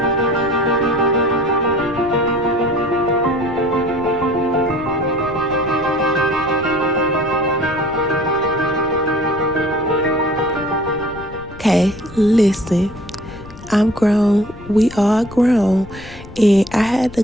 Okay, listen. I'm grown. We all grown. And I had to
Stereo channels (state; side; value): noise; left; rumble, 17 dB below the sound